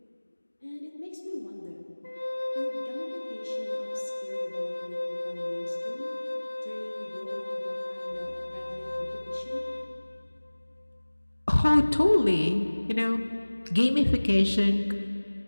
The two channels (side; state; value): both; inverted; correlation -1.00